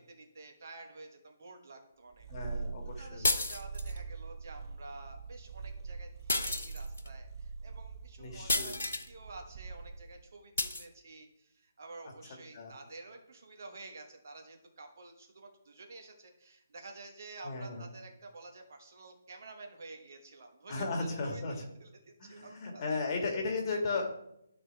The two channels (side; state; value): both; inverted; correlation -0.72